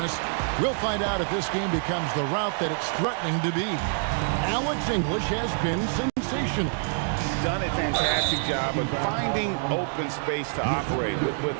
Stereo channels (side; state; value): left; silent; 61 dB below the other